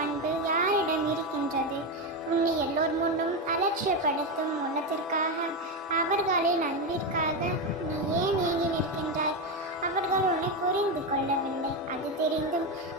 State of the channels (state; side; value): normal; both; correlation 0.11